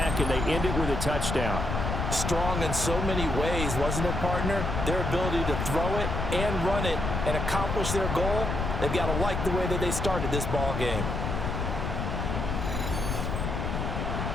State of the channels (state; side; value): noise; left; rumble, 2 dB below the sound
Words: and they end it with a touchdown. Strong in so many ways, wasn't it, partner? Their ability to throw it and run it and accomplish their goal, they've got to like the way that they started this ball game.